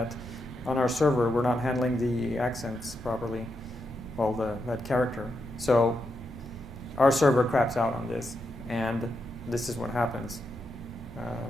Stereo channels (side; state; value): both; normal; correlation 0.84